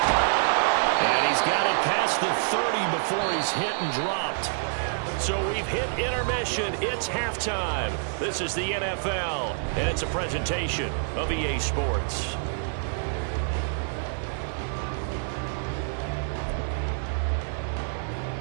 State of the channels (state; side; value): silent; left; 60 dB below the other